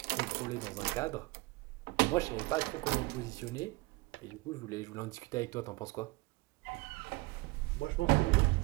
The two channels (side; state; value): left; quieter; 23.6 dB